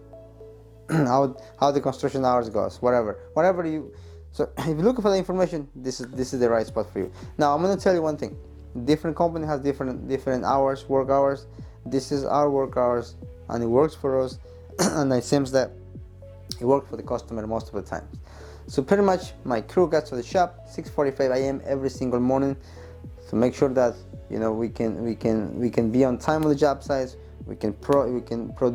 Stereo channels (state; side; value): identical; both; correlation 1.00